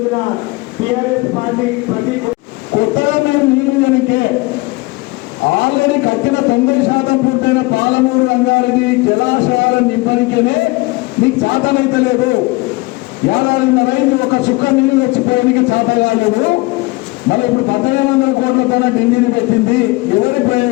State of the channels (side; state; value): right; quieter; 23.7 dB